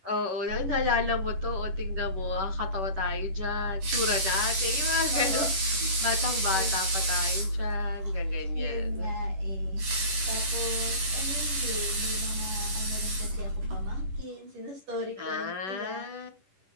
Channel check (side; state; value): left; late; 10 ms